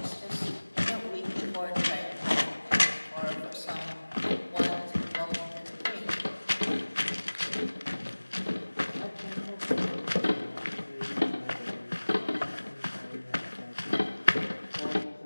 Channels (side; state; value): both; inverted; correlation -1.00